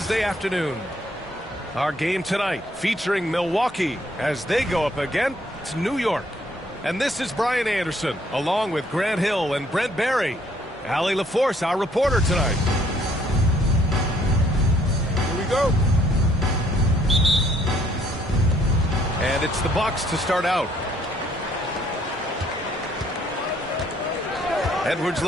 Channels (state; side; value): normal; both; correlation 0.65